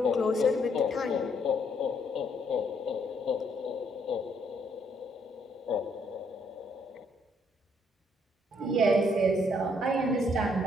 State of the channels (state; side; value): normal; both; correlation 0.70